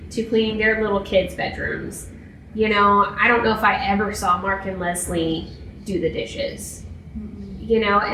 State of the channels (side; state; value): both; identical; correlation 1.00